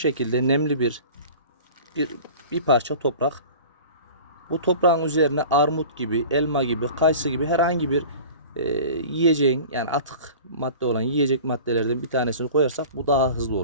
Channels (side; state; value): both; inverted; correlation -0.40